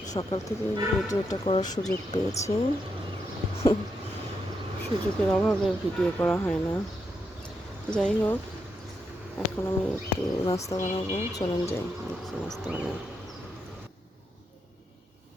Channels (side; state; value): both; normal; correlation 0.82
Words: সকাল থেকে ভিডিওটা করার সুযোগ পেয়েছি। সুযোগের অভাবে ভিডিও করা হয় না। যাই হোক, এখন আমি একটু নাস্তা বানাবো। চলেন যাই, দেখি নাস্তা বানাই।